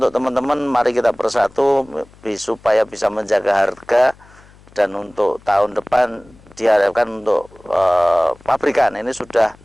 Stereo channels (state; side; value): noise; left; hum, 26 dB below the sound